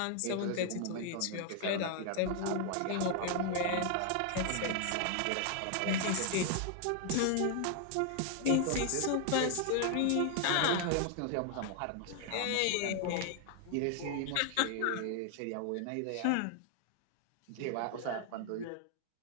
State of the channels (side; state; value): both; different; correlation 0.00